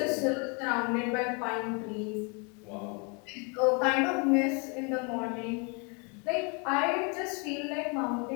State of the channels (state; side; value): quieter; right; 33.4 dB